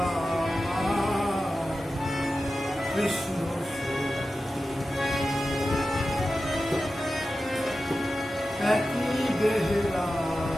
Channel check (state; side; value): normal; both; correlation 0.93